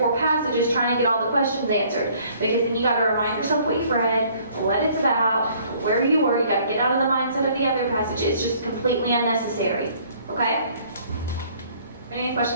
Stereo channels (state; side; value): inverted; both; correlation -0.59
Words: passages trying to get all the questions answered. Because then you got to remind yourself what you've read, what it's about, where you were. You got to get out of the mindset of the other passage. It's just completely unnecessary, okay? Any